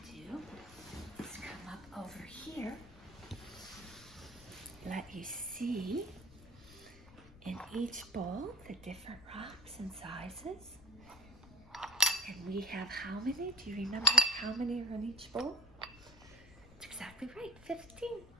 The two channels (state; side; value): noise; left; rumble, 20 dB below the sound